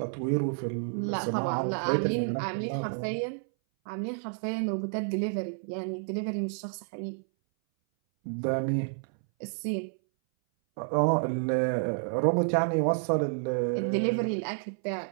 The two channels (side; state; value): left; silent; 58 dB below the other